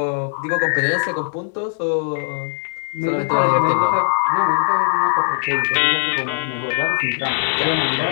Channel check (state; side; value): silent; right; digital silence